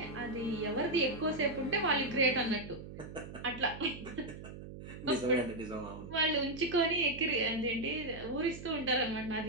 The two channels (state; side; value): noise; right; hum, 12 dB below the sound